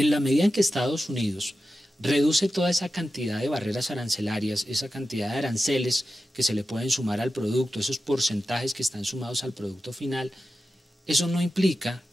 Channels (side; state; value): both; normal; correlation 0.92